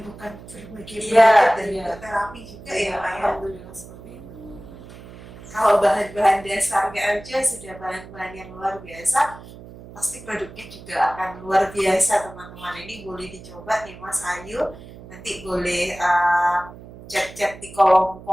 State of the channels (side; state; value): right; noise; hum, 17 dB below the sound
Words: berbagai penyakit dan terapi juga ya Pak ya. Alhamdulillah seperti itu. Kalau bahan-bahan dasarnya aja sudah bahan-bahan yang luar biasa, pasti produknya juga akan luar biasa teman-teman. Ini boleh dicoba nih Mas Ayu, nanti boleh chat-chat di kolom